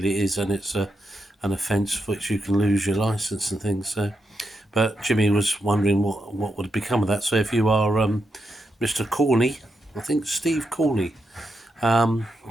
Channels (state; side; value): normal; both; correlation 0.84